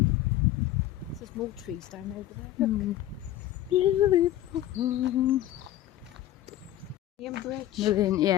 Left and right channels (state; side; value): quieter; right; 13.4 dB